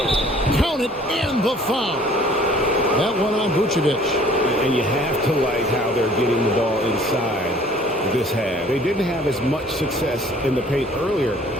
Count it, and the foul. That one on Vucevic. And you have to like how they're getting the ball inside this half. They didn't have as much success in the paint earlier,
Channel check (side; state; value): both; normal; correlation 0.54